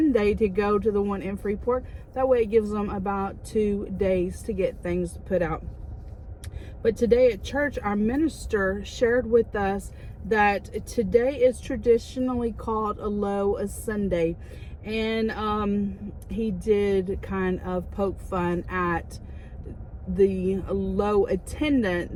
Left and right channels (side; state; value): both; identical; correlation 1.00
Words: to go to the one in Freeport. That way it gives them about 2 days to get things put out. But today at church, our minister shared with us that today is traditionally called a low Sunday. And he did kind of poke fun at the low